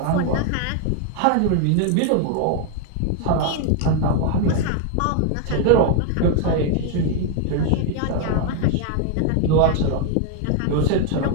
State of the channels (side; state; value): both; different; correlation 0.00